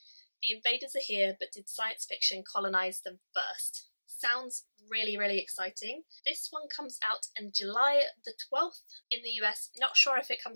The invaders are here, but did science fiction colonize them first? Sounds really, really exciting. This one comes out on July the 12th in the US. Not sure if it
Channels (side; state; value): both; inverted; correlation -1.00